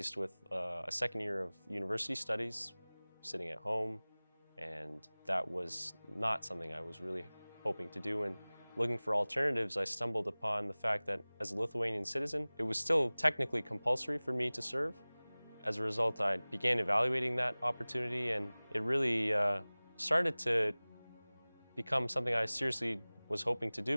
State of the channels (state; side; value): inverted; both; correlation -1.00